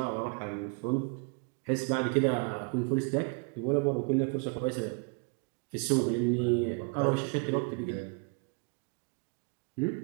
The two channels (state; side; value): quieter; left; 35.7 dB